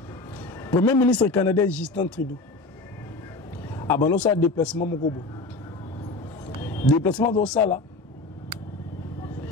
Premier ministre canadien Justin Trudeau. Abano sa déplacement moko bo. Déplacement de ça là.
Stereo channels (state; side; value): quieter; right; 3.2 dB